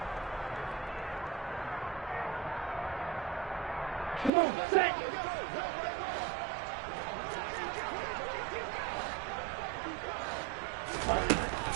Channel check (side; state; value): left; drops out; at 4.3 s